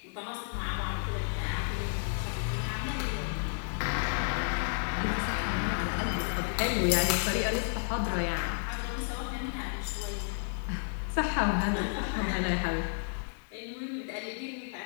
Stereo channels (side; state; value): right; silent; digital silence